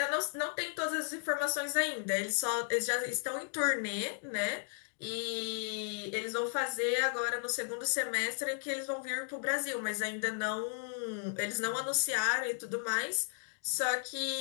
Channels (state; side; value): silent; right; digital silence